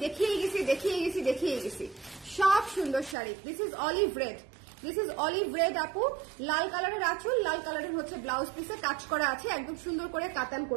দেখিয়ে গেছি, সব সুন্দর sari. This is olive red আপু, লাল কালারের আঁচল, লাল কালারের হচ্ছে ব্লাউজ পিসে কাজ করা আছে, একদম সুন্দর করে কাতান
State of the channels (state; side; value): drops out; left; at 3.2 s